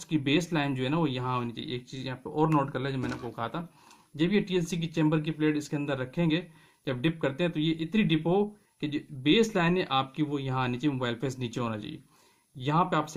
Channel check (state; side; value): identical; both; correlation 1.00